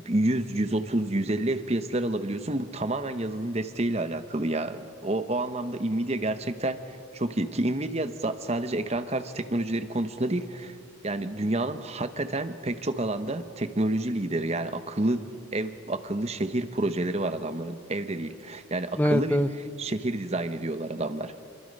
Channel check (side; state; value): both; normal; correlation 0.64